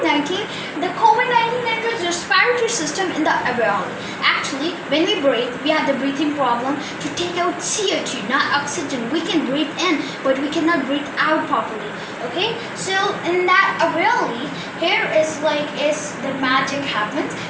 the COVID-19 enters the respiratory system in the alveoli. Actually, when we breathe, we have the breathing problem to take out CO2, not oxygen. We can breathe in, but we cannot breathe out properly. Okay, so in that alveoli, here is the magic happens.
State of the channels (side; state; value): both; identical; correlation 1.00